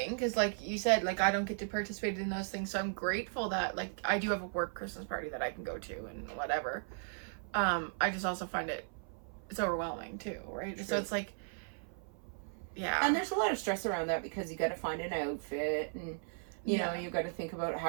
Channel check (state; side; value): silent; left; 54 dB below the other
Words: because, like you said, like, I don't get to participate in those things, so I'm grateful that, like, I do have a work Christmas party that I can go to and whatever. I just also find it's overwhelming too, right? True. So it's like, yeah. And there's a lot of stress around that because you got to find an outfit and, you know, you got to think about